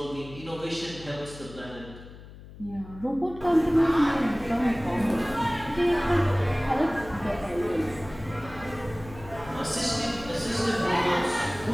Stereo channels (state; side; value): noise; left; hum, 17 dB below the sound